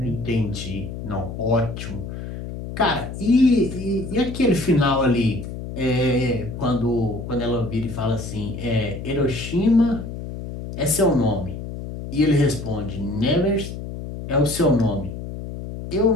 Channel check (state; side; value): noise; left; hum, 8 dB below the sound